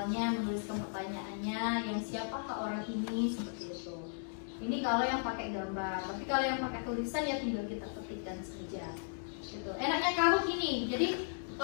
menuliskan pertanyaannya, yang siapakah orang ini, seperti itu. Ini kalau yang pakai gambar. Tapi kalau yang pakai tulisan ya tinggal kita ketikkan saja. Gitu. Enaknya Kahoot ini. Jadi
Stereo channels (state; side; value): silent; right; digital silence